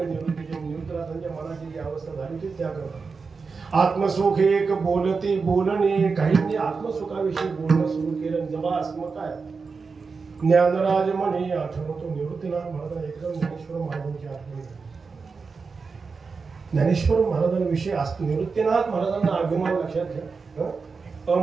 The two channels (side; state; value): left; quieter; 4.8 dB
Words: निवृत्तनाथांच्या मनाची जी अवस्था झाली होती त्या करतात. आत्मसुख एक बोलते बोलणे काहींनी आत्मसुखाविषयी बोलणं सुरू केलं. जबास मग काय ज्ञानराज म्हणे आठवतो निवृत्तीनाथ महाराज एकदम ज्ञानेश्वर महाराजांची आठवण. ज्ञानेश्वर महाराजांविषयी निवृत्तीनाथ महाराजांना अभिमान लक्षात घ्या.